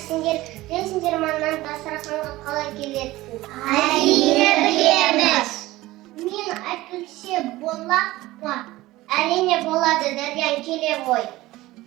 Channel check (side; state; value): left; quieter; 18.0 dB